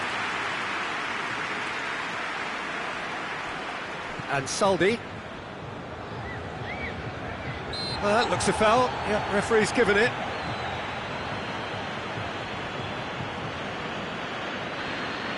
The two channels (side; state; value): both; identical; correlation 1.00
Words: And Saldi. Well, that looks a foul, yeah, referee's given it.